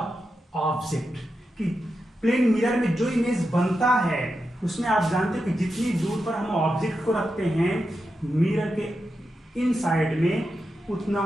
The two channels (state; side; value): normal; both; correlation 0.88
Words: object. कि प्लेन मिरर में जो इमेज बनता है उसमें आप जानते हो कि जितनी दूर पर हम ऑब्जेक्ट को रखते हैं मिरर के इन साइड में,